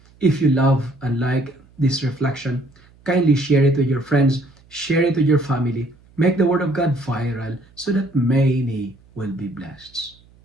If you love and like this reflection, kindly share it with your friends, share it with your family, make the word of God viral so that many will be blessed.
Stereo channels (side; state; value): right; noise; hum, 29 dB below the sound